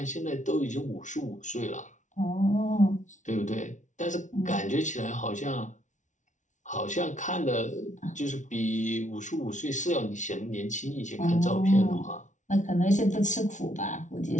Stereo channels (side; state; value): right; late; 0.36 ms